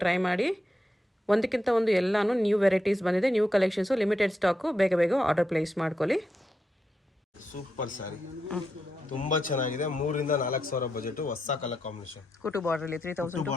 ಟ್ರೈ ಮಾಡಿ. ಒಂದಕ್ಕಿಂತ ಒಂದು ಎಲ್ಲಾನು ನ್ಯೂ ವೆರೈಟೀಸ್ ಬಂದಿದೆ, ನ್ಯೂ ಕಲೆಕ್ಷನ್ಸು, ಲಿಮಿಟೆಡ್ ಸ್ಟಾಕು. ಬೇಗ ಬೇಗ ಆರ್ಡರ್ ಪ್ಲೇಸ್ ಮಾಡ್ಕೊಳ್ಳಿ. ಸೂಪರ್ ಸ್ಯಾರಿ, ತುಂಬಾ ಚೆನ್ನಾಗಿದೆ. 3 ರಿಂದ 4 ಸಾವಿರ ಬಜೆಟ್, ಹೊಸ ಕಲರ್ ಕಾಂಬಿನೇಷನ್. ಕುಟು ಬಾರ್ಡರ್ ಅಲ್ಲಿ 3000 to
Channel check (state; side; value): normal; both; correlation 0.84